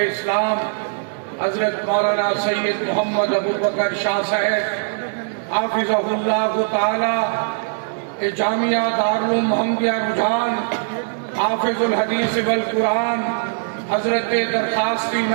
اسلام حضرت مولانا سید محمد ابو بکر شاہ صاحب حافظہ اللہ تعالی جامعہ دارالعلوم محمدیہ رجحان حافظ الحدیث والقرآن حضرت درخواستی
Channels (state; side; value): silent; left; digital silence